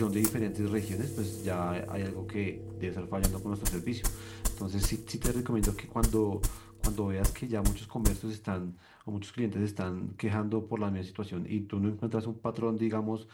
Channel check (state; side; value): identical; both; correlation 1.00